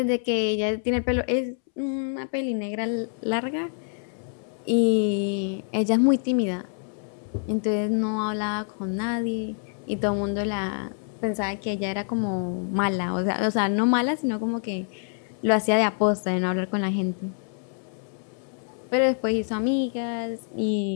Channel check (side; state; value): right; silent; 61 dB below the other